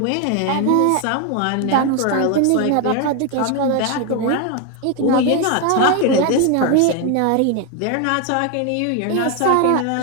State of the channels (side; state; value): both; different; correlation 0.01